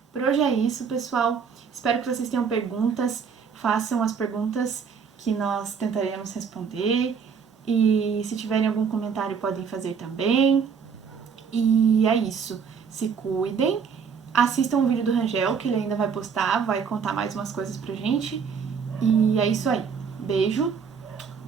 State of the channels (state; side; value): quieter; left; 6.3 dB